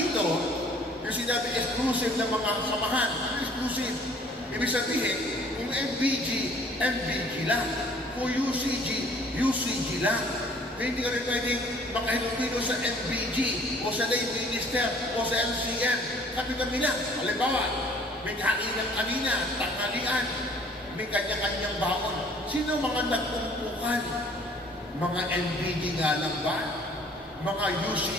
yung sinabi exclusive ng mga samahan. Ano exclusive? Ibig sabihin, kung MBG, MBG lang. Kung UCG, UCG lang. Kaya hindi ka rin pwedeng makahilupino sa MBG o sa lay minister o sa LCM. Kami lang. Halimbawa, may kaninang-kanina, tanghalian, may kanya-kanyang baon. Sino mga nagpumpukan? Mga MBG nga lang ba? Mga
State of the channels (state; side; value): normal; both; correlation 0.55